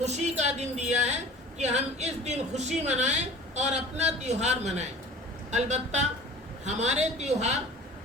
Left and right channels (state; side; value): normal; both; correlation 0.44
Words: کا دن دیا ہے کہ ہم اس دن خوشی منائیں اور اپنا تیوہار منائیں۔ البتہ ہمارے